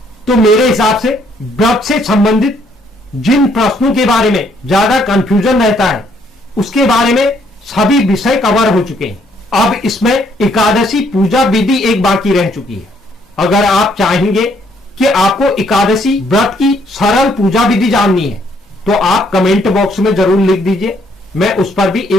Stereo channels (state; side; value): normal; both; correlation 0.68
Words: तो मेरे हिसाब से व्रत से संबंधित जिन प्रश्नों के बारे में ज्यादा कंफ्यूजन रहता है उसके बारे में सभी विषय कवर हो चुके हैं। अब इसमें एकादशी पूजा विधि एक बाकी रह चुकी है। अगर आप चाहेंगे कि आपको एकादशी व्रत की सरल पूजा विधि जाननी है तो आप कमेंट बॉक्स में जरूर लिख दीजिए, मैं उस पर भी